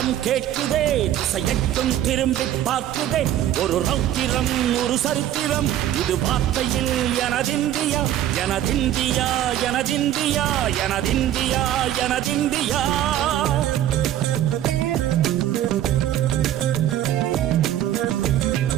கேட்குதே, திசையெட்டும் திரும்பி பார்க்குதே. ஒரு ரௌத்திரம் ஒரு சரித்திரம், இது வார்த்தையில் எனதிந்தியா எனதிந்தியா எனதிந்தியா எனதிந்தியா எனதிந்தியா.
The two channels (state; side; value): quieter; left; 12.1 dB